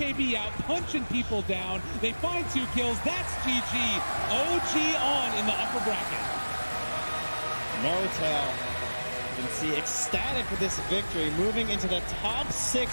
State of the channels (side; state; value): both; inverted; correlation -1.00